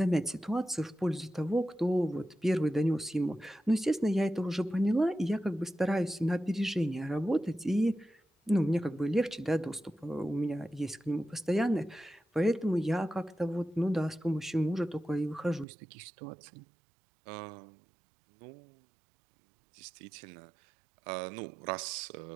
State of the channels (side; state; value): left; drops out; at 15.7 s